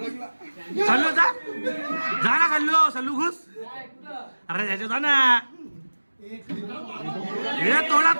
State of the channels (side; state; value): both; inverted; correlation -1.00